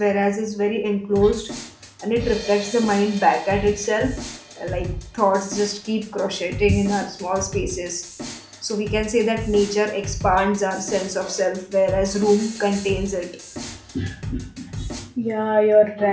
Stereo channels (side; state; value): both; identical; correlation 1.00